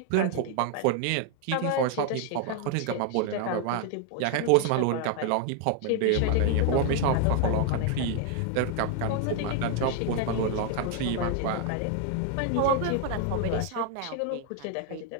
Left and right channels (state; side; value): different; both; correlation 0.00